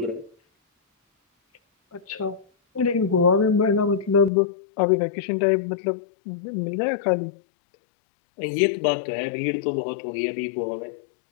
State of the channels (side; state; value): right; drops out; at 4.3 s